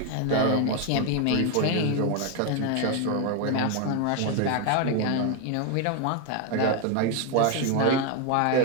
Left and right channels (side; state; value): both; different; correlation 0.01